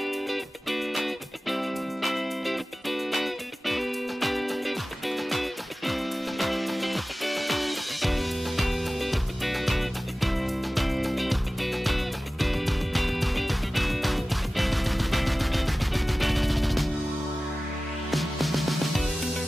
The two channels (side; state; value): both; normal; correlation 0.96